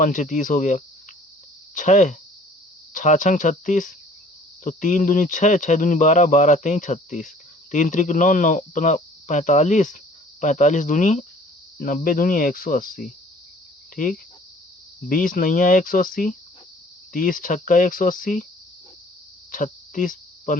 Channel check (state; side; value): normal; both; correlation 0.53